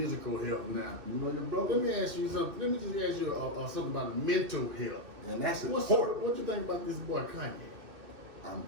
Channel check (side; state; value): left; late; 2.6 ms